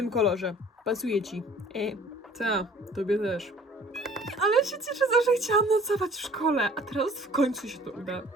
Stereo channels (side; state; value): both; normal; correlation 0.51